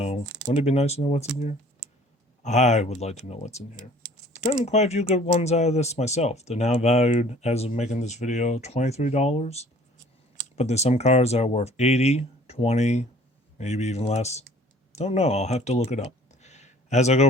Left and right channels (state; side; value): normal; both; correlation 0.52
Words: Wouldn't it be nice to know what's in here? I would like to know what's in here. I've gotten quite a few good ones out of this myself. They're now valued, as of making this video, $23. But there's some cards that are worth $80, $20, maybe even less. Don't know. I'll have to look it up. As I